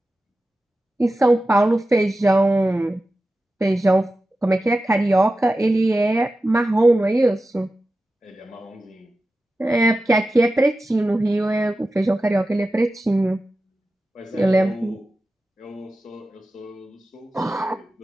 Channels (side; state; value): both; normal; correlation 0.93